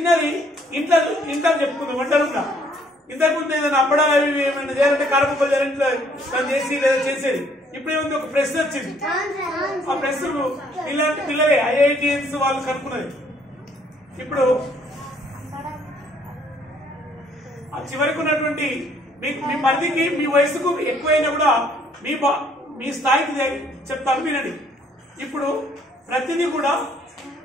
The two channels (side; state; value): both; normal; correlation 0.64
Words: ఇంట్లో ఇంట్లో చెప్పుకుందాం వంటలుగా. ఇంతకుముందు ఏదైనా అప్పడాలు అవి ఏమైనా చేయాలంటే కారపప్పులు చేయాలంటే దాన్ని చేసి లేదా చేసేది. ఇప్పుడు ఏముంది, ఒక ప్రెస్ వచ్చింది. ఆ ప్రెస్ ఇలాంటి పిల్లలే ఐఐటిఎన్స్ వాళ్ళు కనుక్కున్నది. ఇప్పుడు ఆ చివరికి ఉన్నటువంటి మీ పరిధికి మీ వయసుకు ఎక్కువైనా కూడా మీ స్థాయికి చెప్తాను వినండి. ఇప్పుడు ప్రతిదీ కూడా